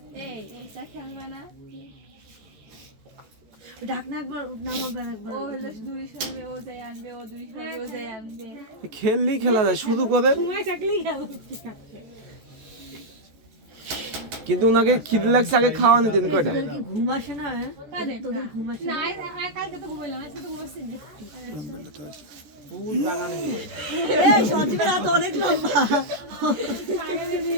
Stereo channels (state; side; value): late; left; 14 ms